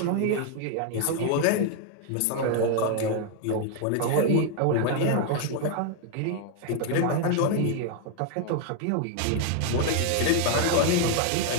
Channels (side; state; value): both; different; correlation 0.00